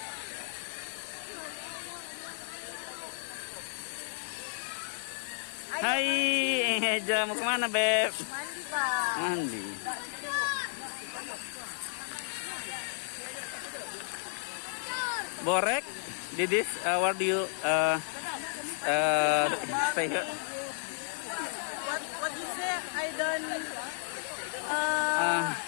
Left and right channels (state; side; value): silent; right; digital silence